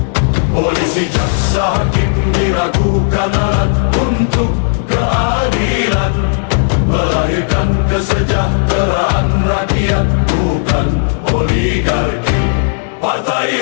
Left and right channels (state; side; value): silent; right; digital silence